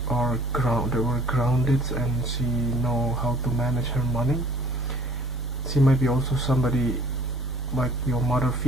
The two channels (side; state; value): both; normal; correlation 0.55